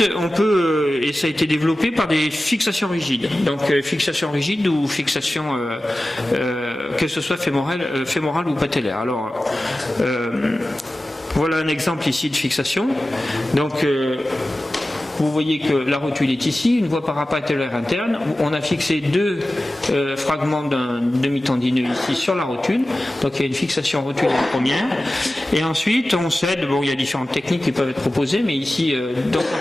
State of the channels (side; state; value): both; normal; correlation 0.95